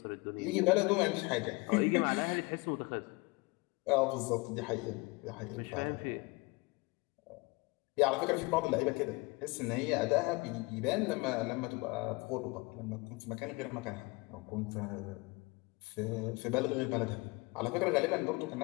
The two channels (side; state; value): right; quieter; 26.0 dB